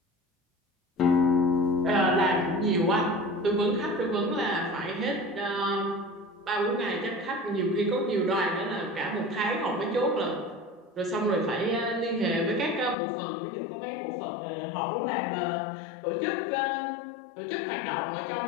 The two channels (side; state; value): right; drops out; at 13.0 s